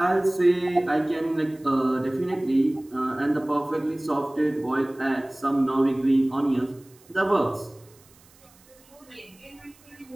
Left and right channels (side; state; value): right; noise; hiss, 28 dB below the sound